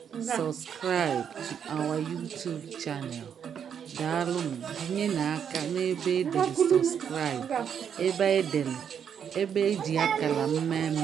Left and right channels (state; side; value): quieter; left; 8.0 dB